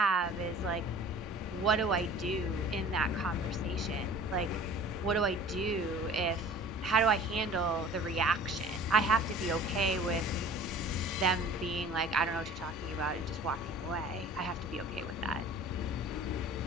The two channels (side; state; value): both; normal; correlation 0.45